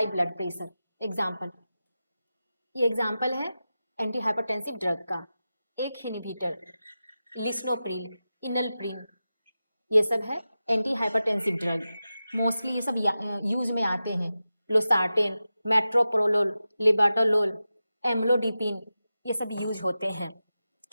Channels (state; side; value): inverted; both; correlation -0.93